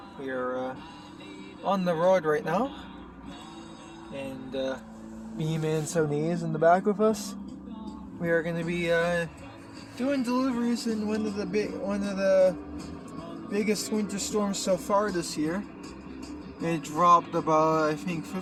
We are on the road right now, and Bman78 is in the back with us. We are going to be doing deliveries in one of the biggest winter storms so far this year. It dropped about, I think,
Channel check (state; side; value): identical; both; correlation 1.00